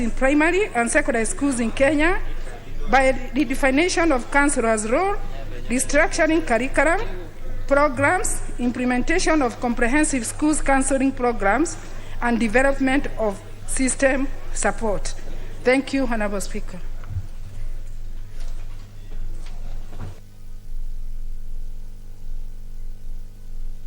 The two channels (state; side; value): identical; both; correlation 1.00